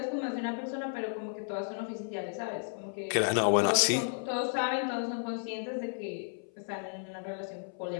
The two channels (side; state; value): right; silent; 56 dB below the other